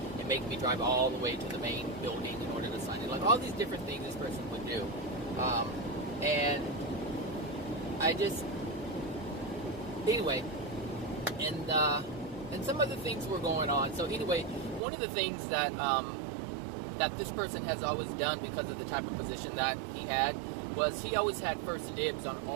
and make me drive all the way to the main building in order to sign it. Like all these different things this person would do. And I just, anyway, and some other things were going on. So anyway, one of the things that that this person has always done, because of the type of position that he had, was he always had first dibs on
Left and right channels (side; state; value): left; drops out; at 14.8 s